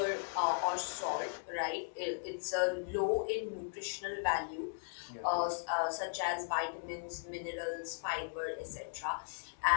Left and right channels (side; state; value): right; silent; digital silence